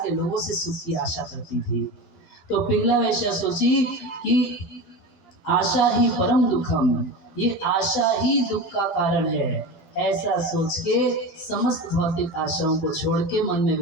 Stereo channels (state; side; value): late; right; 11 ms